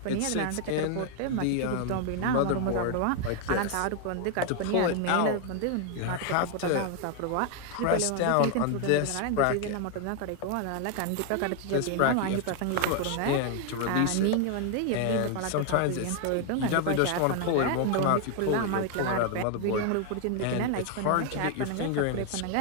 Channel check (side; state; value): both; different; correlation 0.00